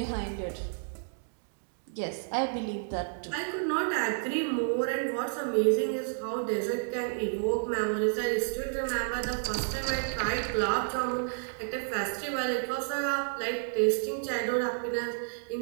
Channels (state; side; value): silent; left; digital silence